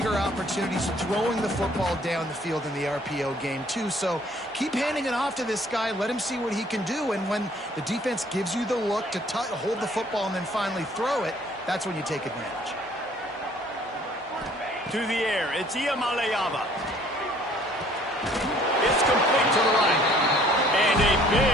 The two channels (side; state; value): both; normal; correlation 0.58